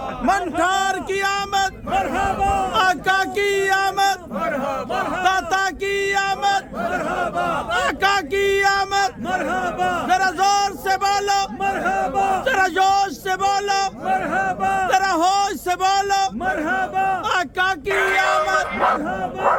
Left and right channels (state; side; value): identical; both; correlation 1.00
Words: मनकार की आमद, आका की आमद, दाता की आमद, आका की आमद। जरा जोर से बोलो, जरा जोश से बोलो, जरा होश से बोलो, आका की आमद।